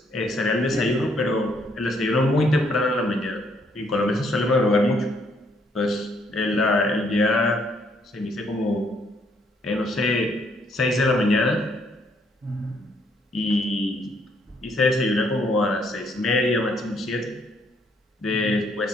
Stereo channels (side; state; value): both; normal; correlation 0.69